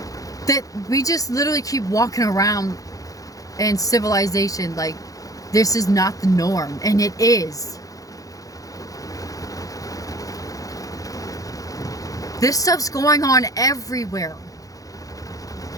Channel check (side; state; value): right; late; 0.17 ms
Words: that we just literally keep walking around in civilization like this is not the norm, and it is. This stuff's going on everywhere.